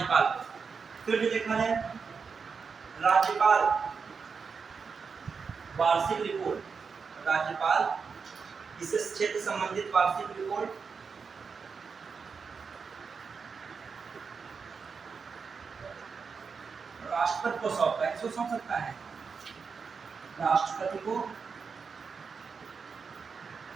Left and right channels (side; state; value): left; quieter; 5.5 dB